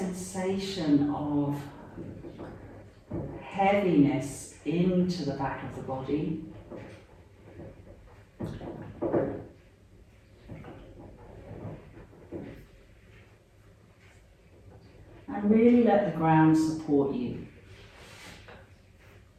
of heaviness into the back of the body. And really let the ground support you.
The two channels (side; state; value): both; identical; correlation 1.00